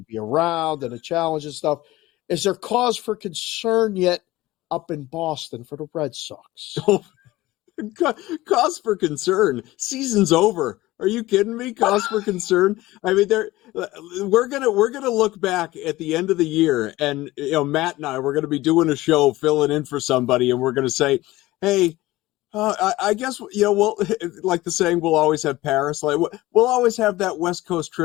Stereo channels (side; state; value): right; quieter; 18.1 dB